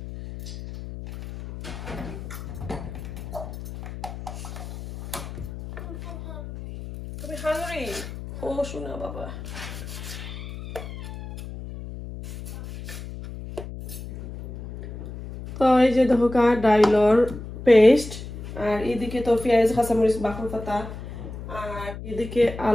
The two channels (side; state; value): left; noise; hum, 10 dB below the sound